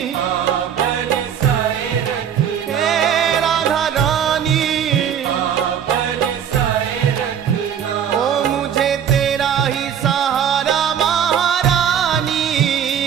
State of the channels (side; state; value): left; quieter; 8.7 dB